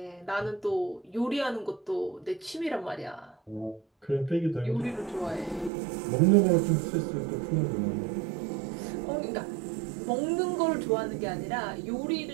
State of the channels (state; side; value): drops out; left; at 5.7 s